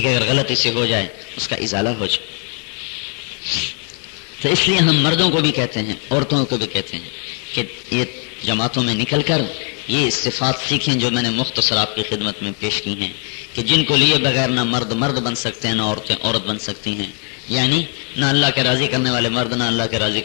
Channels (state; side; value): quieter; right; 38.6 dB